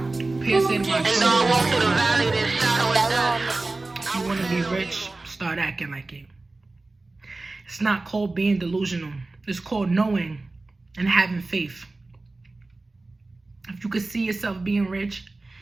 And though I walk through the valley, there's shadow of death. You want to be rich? Start acting like it. It's not called being delusional. It's called knowing and having faith. If you could see yourself being rich,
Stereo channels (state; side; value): quieter; left; 3.2 dB